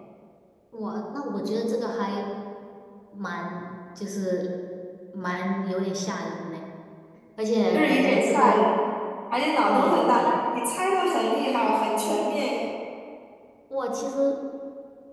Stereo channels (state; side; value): identical; both; correlation 1.00